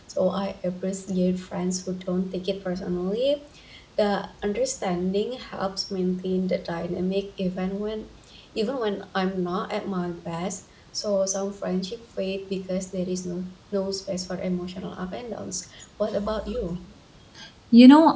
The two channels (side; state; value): both; identical; correlation 1.00